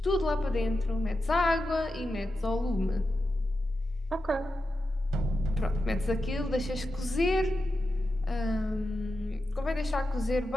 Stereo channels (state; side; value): normal; both; correlation 0.90